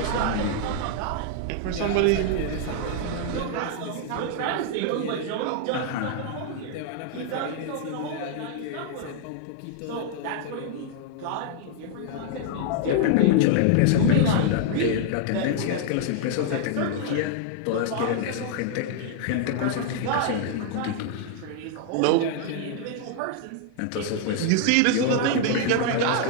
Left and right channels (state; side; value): different; both; correlation -0.01